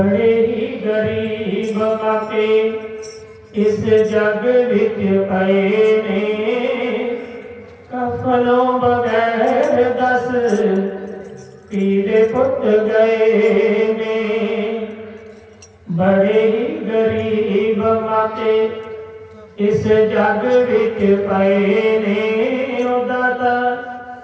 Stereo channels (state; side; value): identical; both; correlation 1.00